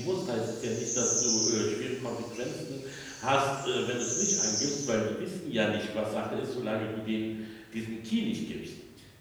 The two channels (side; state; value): both; identical; correlation 1.00